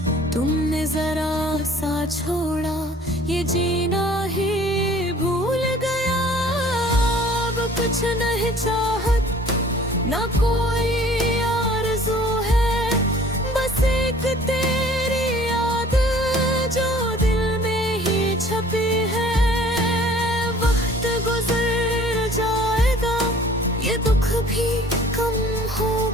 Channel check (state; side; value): normal; both; correlation 0.51